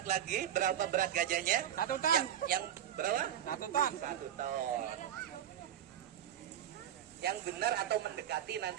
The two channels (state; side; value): quieter; left; 10.5 dB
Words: lagi berapa berat gajahnya? 1 ton. Yang berapa? 1 ton. 1 ton. Yang benar atau mendekati